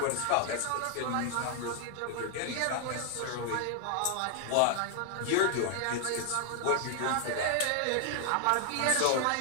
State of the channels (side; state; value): both; different; correlation 0.00